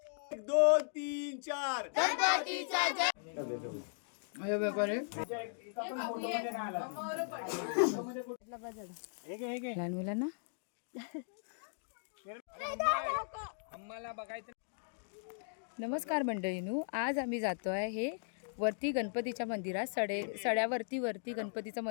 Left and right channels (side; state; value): right; silent; digital silence